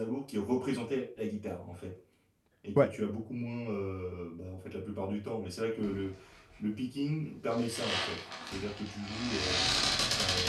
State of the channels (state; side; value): identical; both; correlation 1.00